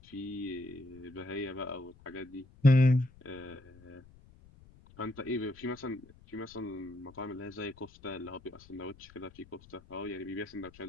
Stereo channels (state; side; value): noise; left; rumble, 24 dB below the sound